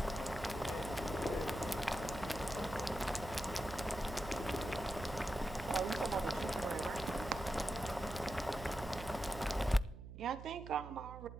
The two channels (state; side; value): noise; right; hum, 11 dB below the sound